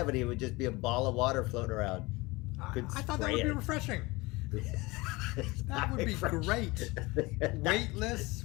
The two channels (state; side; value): quieter; right; 22.9 dB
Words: it would just be a ball of water floating around. I thought that would be refreshing. That would be great. Weightless,